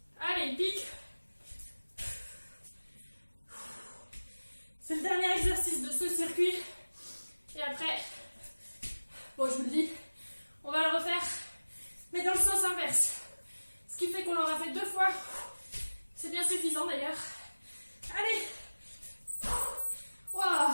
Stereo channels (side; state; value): both; inverted; correlation -1.00